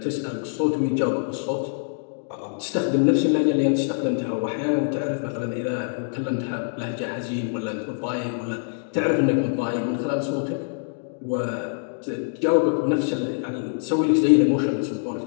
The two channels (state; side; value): silent; right; digital silence